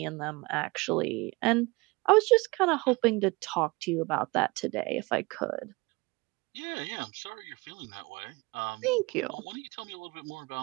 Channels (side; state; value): left; quieter; 25.1 dB